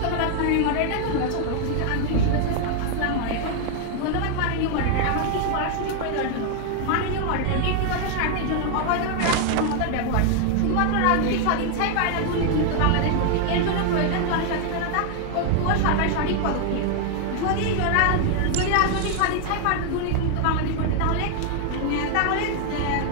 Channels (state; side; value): different; both; correlation 0.00